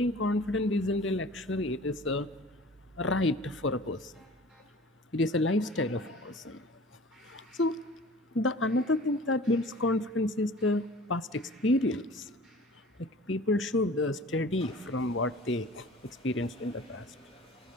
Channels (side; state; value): both; normal; correlation 0.44